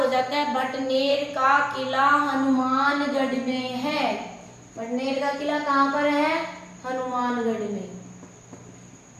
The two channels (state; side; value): identical; both; correlation 1.00